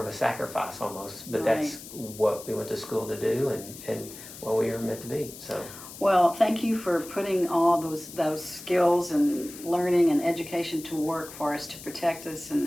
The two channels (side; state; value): left; noise; hiss, 14 dB below the sound